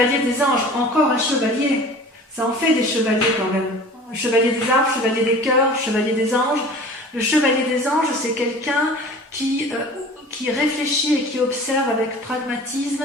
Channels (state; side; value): normal; both; correlation 0.42